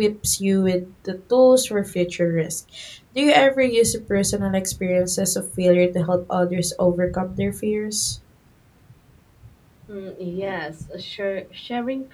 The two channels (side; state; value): both; identical; correlation 1.00